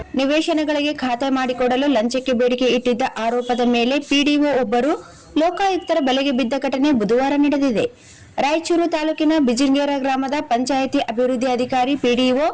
ನಿವೇಶನಗಳಿಗೆ ಖಾತೆ ಮಾಡಿಕೊಡಲು ಲಂಚಕ್ಕೆ ಬೇಡಿಕೆ ಇಟ್ಟಿದ್ದ ಆರೋಪದ ಮೇಲೆ ಪಿಡಿಒ ಒಬ್ಬರು ಲೋಕಾಯುಕ್ತರ ಬಲೆಗೆ ಬಿದ್ದ ಘಟನೆ ಬುಧವಾರ ನಡೆದಿದೆ. ರಾಯಚೂರು ತಾಲೂಕಿನ ಬಿಜಿಂಗೇರ ಗ್ರಾಮದ ಪಂಚಾಯಿತಿ ಅಭಿವೃದ್ಧಿ ಅಧಿಕಾರಿ ಪಿಡಿಒ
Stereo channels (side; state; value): both; identical; correlation 1.00